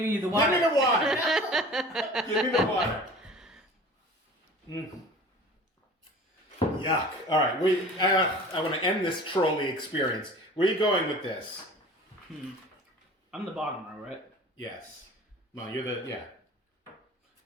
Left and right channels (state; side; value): normal; both; correlation 0.42